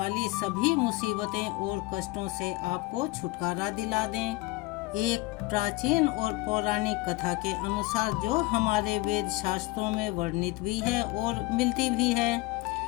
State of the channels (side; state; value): right; quieter; 21.1 dB